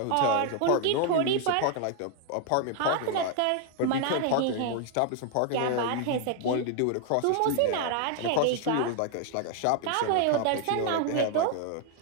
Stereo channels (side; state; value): both; different; correlation 0.00